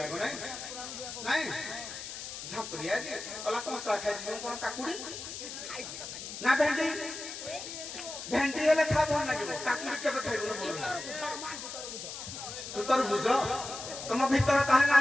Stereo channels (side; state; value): left; noise; hiss, 9 dB below the sound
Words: ଆଗ ନାଇଁ ନାଇଁ ଝାମ୍ପୁରିଆ କି କହିଲା କଞ୍ଚା ଖାଇଛି ମୁଁ କଣ କାକୁଡି ନା ଭେଣ୍ଡି ଭେଣ୍ଡି ହେଲେ ଖା ଭଲ ଲାଗିବ କାକୁଡି କେବେ ଖାଇବୁନି ଭଲ ତୁ ତୋର ବୁଝ ତମ ଭିତରେ ତାହେଲେ